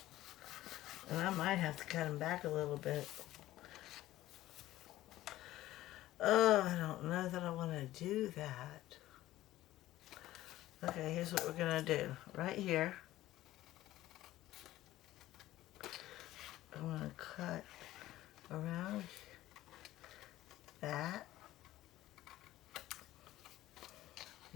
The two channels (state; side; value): quieter; right; 15.3 dB